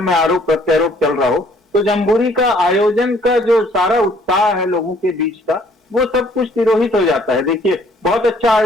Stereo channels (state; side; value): normal; both; correlation 0.61